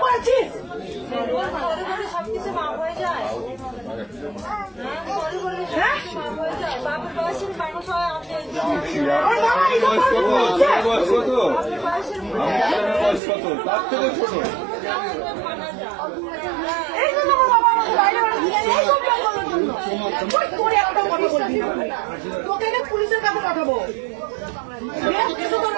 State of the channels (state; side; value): drops out; left; at 13.2 s